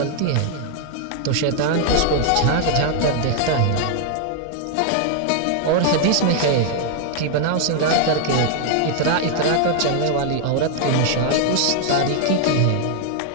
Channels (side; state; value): both; different; correlation 0.00